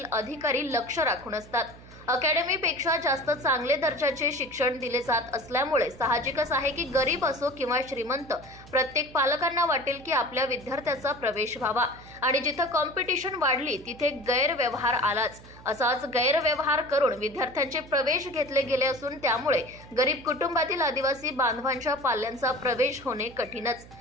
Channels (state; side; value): noise; right; hum, 20 dB below the sound